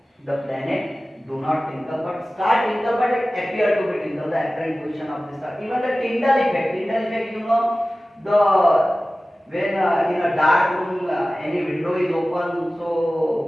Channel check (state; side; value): normal; both; correlation 0.96